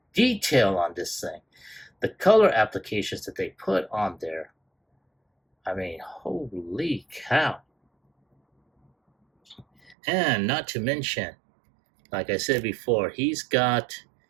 detail on this thing. The color applications that they put on there. I mean, holy cow. And not to mention, like I said before, he's got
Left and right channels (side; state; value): left; drops out; at 10.0 s